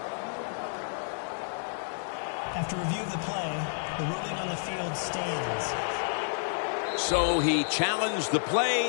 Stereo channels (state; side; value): silent; right; digital silence